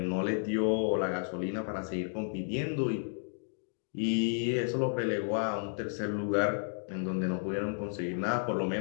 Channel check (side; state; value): right; silent; digital silence